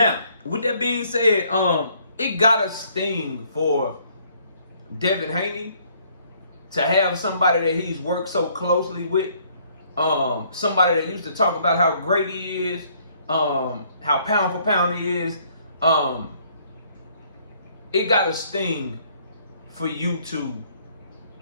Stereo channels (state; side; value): inverted; both; correlation -0.64